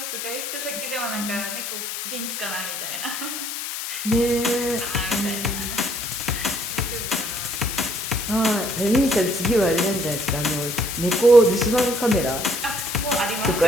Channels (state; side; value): noise; left; hiss, 5 dB below the sound